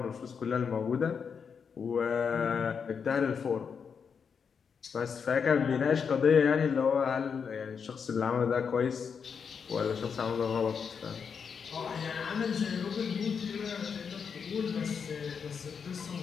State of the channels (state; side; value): quieter; right; 6.4 dB